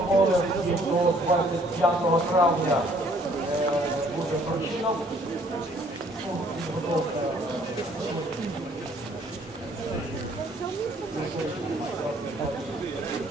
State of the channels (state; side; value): normal; both; correlation 0.61